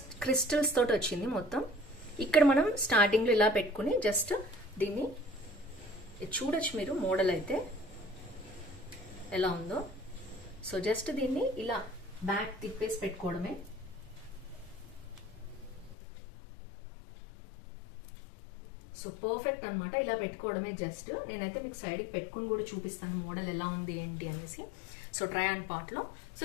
క్రిస్టల్స్ తోటి వచ్చింది మొత్తం. ఇక్కడ మనం స్టార్టింగ్ లో ఇలా పెట్టుకుని జస్ట్ దీన్ని చూడొచ్చు మీరు, మోడల్ అయితే ఎలా ఉందో. సో జస్ట్ దీన్ని ఇలా బ్యాక్ తిప్పేసి పెట్టుకోవడమే. సో పర్ఫెక్ట్ అనమాట, ఇలా పెట్టుకోవడమే. జస్ట్ నేనైతే మీకు సైడ్ కి పెట్టుకుని కూడా చూపిస్తాను మోడల్ ఎలా ఉంది ఏంటి అనేసి. సో ట్రై ఆన్ పార్ట్ లో. సో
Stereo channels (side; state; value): right; drops out; at 16.0 s